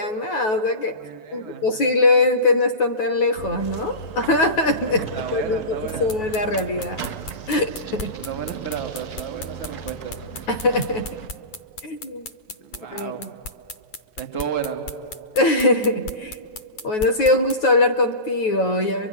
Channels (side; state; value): right; late; 9.3 ms